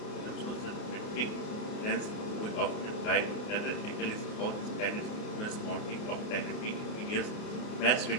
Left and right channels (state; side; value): late; right; 29 ms